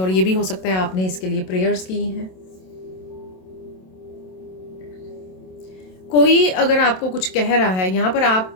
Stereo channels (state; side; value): late; right; 27 ms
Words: ये भी हो सकता है आपने इसके लिए प्रेयर्स की हैं। कोई अगर आपको कुछ कह रहा है यहाँ पर,